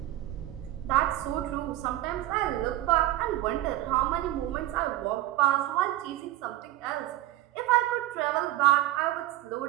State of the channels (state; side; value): quieter; left; 15.1 dB